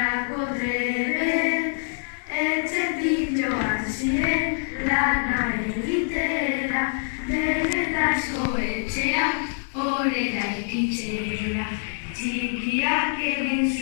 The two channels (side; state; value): right; silent; digital silence